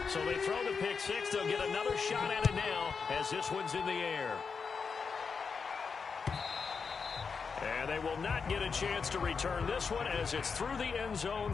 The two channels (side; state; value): right; quieter; 5.4 dB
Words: So they throw the pick six. They'll get another shot at it now as this one's in the air. And they will not get a chance to return this one as it's through the end zone